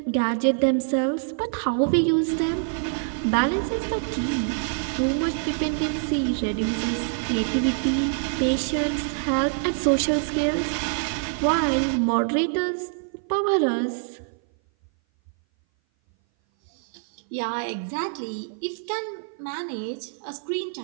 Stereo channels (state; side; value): silent; left; 58 dB below the other